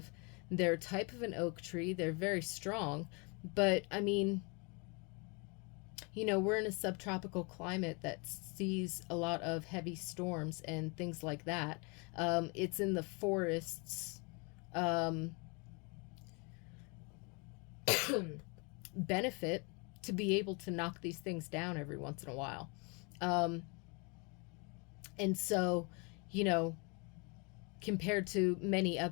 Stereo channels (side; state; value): right; quieter; 32.1 dB